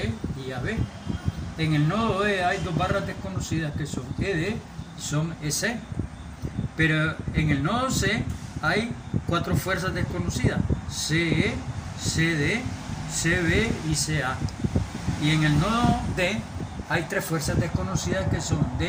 y AB. En el nodo E hay dos barras desconocidas que son ED y son EC. Pero en el nodo C hay cuatro fuerzas desconocidas: CE, CD, CB y CA. Y en el nodo D hay tres fuerzas desconocidas que son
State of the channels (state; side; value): identical; both; correlation 1.00